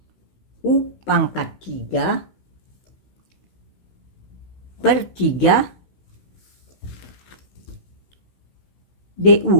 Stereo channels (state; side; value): late; right; 16 ms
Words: U pangkat 3 per 3